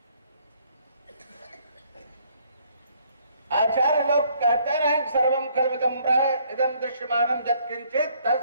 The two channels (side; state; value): both; inverted; correlation -0.65